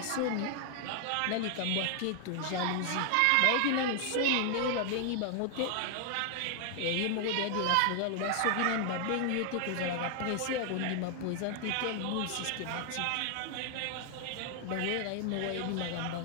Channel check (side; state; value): both; different; correlation 0.00